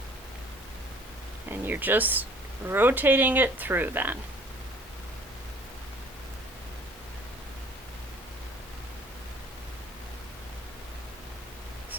and you're just rotating it through then.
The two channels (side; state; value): both; normal; correlation 0.53